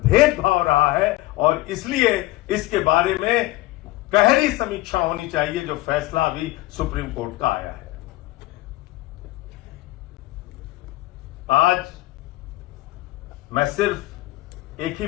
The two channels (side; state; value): right; quieter; 18.3 dB